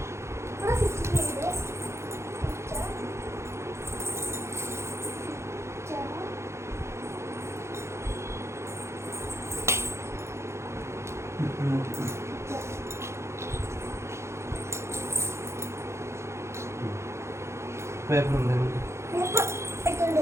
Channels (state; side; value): late; left; 0.13 ms